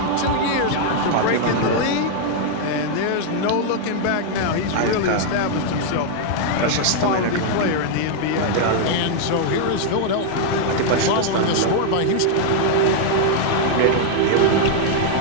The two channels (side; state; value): both; different; correlation 0.00